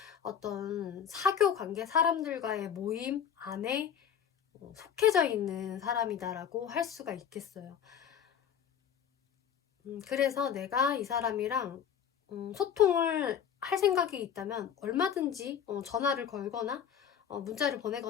어떤 사교 관계 사람들과의 모임 안에 속해져 있는 사람이다라고 할 수가 있겠어요. 그래서 내가 이 사람이랑 소통을 할 생각이 있다면 얼마든지 전화를 걸거나 문자를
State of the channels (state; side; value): quieter; right; 8.5 dB